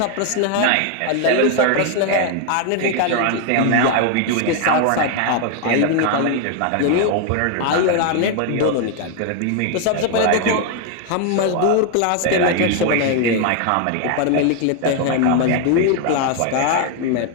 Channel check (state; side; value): different; both; correlation 0.01